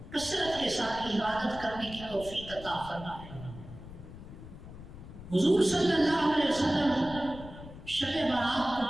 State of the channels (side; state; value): left; noise; rumble, 14 dB below the sound